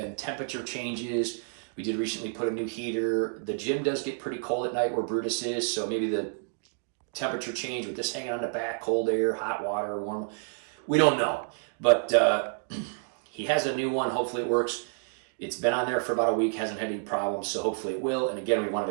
temperature changes. We did recently put a new heater. The gym does get pretty cold at night where Brutus is, so maybe the temperature change with this hanging on the back, cold air, hot water, warm. We don't know, but he has a new one. Hopefully it works. It's been on there for about a week, hasn't had any problems, so hopefully it will. And again, we wanted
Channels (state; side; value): silent; left; 58 dB below the other